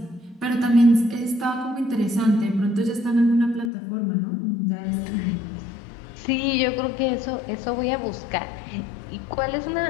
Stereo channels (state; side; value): drops out; right; at 3.7 s